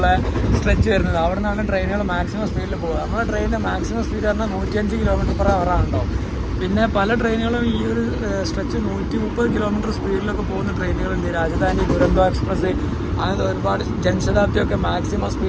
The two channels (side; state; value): both; identical; correlation 1.00